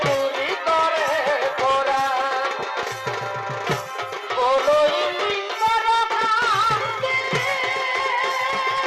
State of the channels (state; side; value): identical; both; correlation 1.00